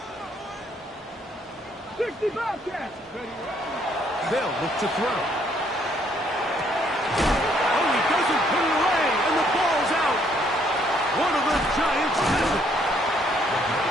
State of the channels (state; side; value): normal; both; correlation 0.67